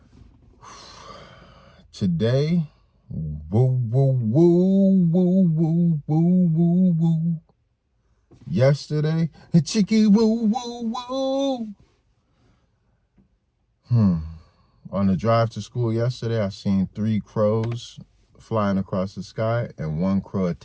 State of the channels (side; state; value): both; identical; correlation 1.00